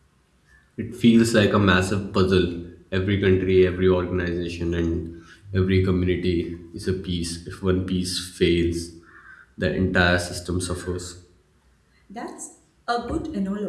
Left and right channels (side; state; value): both; identical; correlation 1.00